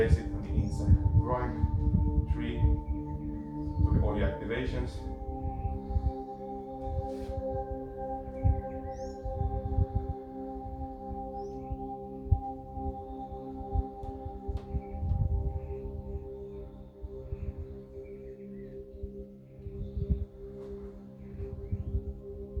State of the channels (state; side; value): identical; both; correlation 1.00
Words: it on the inside. Groin, tree, do all the activations.